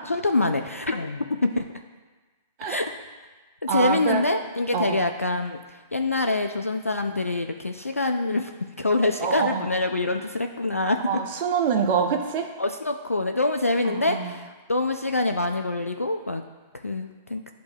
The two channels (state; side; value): inverted; both; correlation -0.60